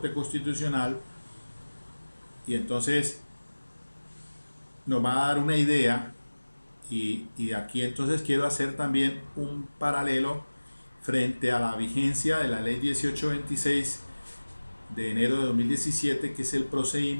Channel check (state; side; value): inverted; both; correlation -1.00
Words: Constitucional, y entonces nos va a dar una idea. Y aquí entonces quiero hacer también un paralelo frente a la vigencia de la ley 1826 de enero de 2017, que es el